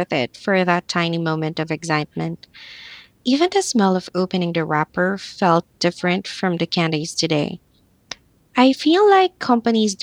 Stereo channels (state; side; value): identical; both; correlation 1.00